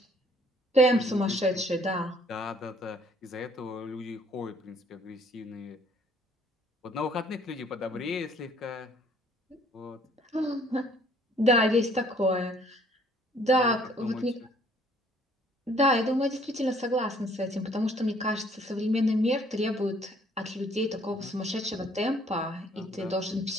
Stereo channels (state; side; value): normal; both; correlation 0.60